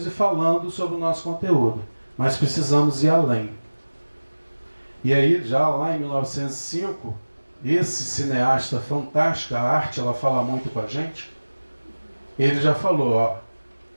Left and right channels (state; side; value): inverted; both; correlation -1.00